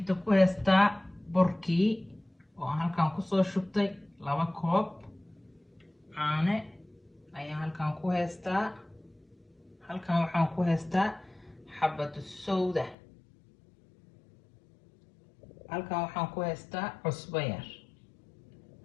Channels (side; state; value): right; drops out; at 13.0 s